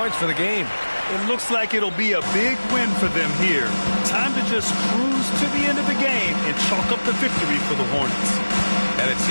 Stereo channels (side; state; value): both; inverted; correlation -1.00